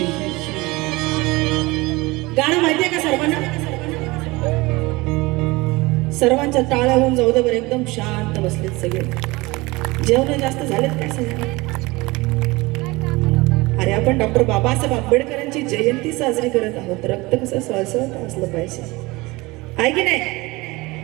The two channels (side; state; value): left; quieter; 22.5 dB